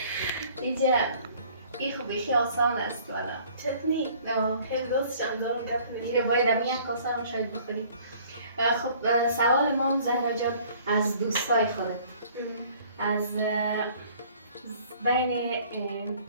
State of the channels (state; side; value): inverted; both; correlation -0.54